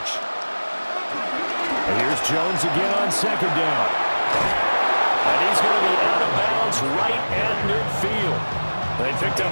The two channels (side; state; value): both; inverted; correlation -1.00